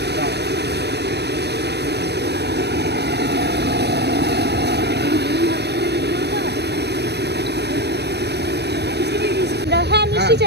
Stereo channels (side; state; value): left; late; 0.49 ms